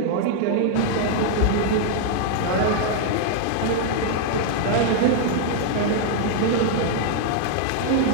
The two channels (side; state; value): both; different; correlation -0.01